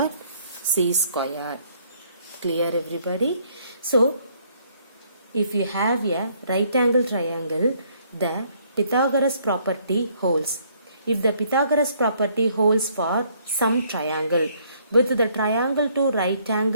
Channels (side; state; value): both; inverted; correlation -0.66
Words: C squared. Clear everybody? So, if you have a right angle triangle, the Pythagoras property holds. If the Pythagoras property holds for some triangle, with the triangle to right